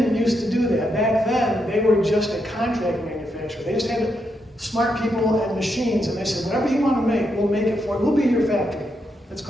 used to do that. Back then, they were just a contract manufacturer. They just had smart people and machines, and they said, whatever you want to make, we'll make it for you. We'll be your factory. That's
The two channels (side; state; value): both; normal; correlation 0.81